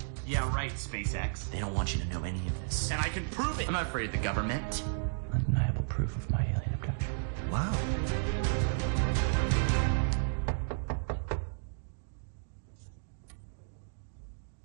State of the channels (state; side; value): silent; left; digital silence